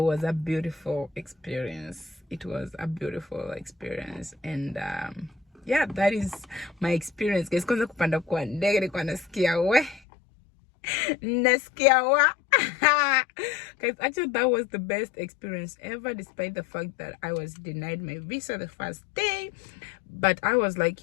was a beautiful experience. It was a beautiful experience. And yeah, that is my experience, guys. Kwanza kupanda kwa ndege nilikuwa nasikia wa guys, actually that was the best experience ever, despite the fact that I was denied my visa the first day. But I was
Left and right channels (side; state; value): right; drops out; at 10.0 s